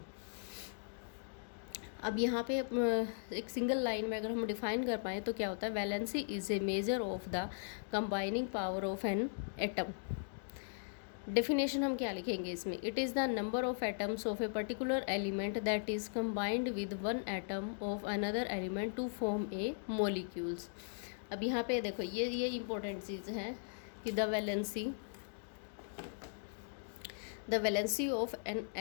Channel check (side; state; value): right; silent; digital silence